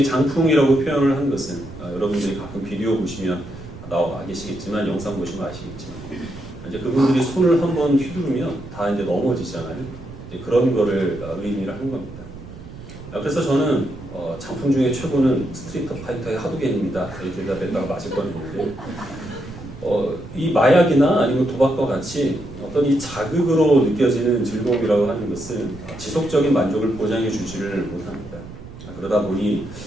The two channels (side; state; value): right; noise; rumble, 15 dB below the sound